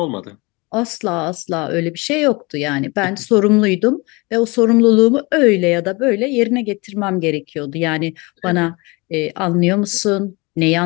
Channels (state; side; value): quieter; right; 26.2 dB